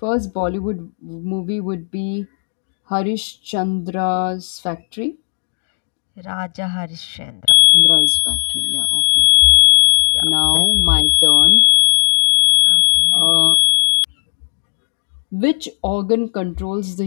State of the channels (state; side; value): silent; right; digital silence